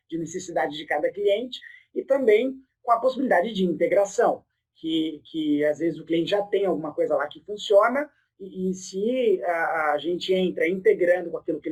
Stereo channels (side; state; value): both; identical; correlation 1.00